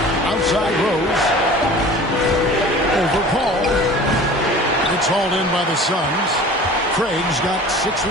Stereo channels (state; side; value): normal; both; correlation 0.42